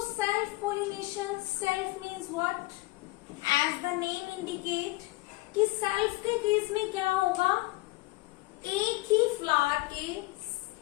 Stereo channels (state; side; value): quieter; right; 21.3 dB